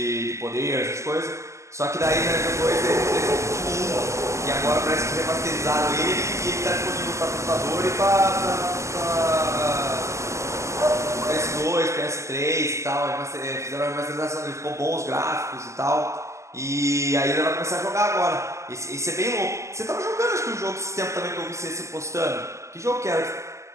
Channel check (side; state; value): left; late; 0.14 ms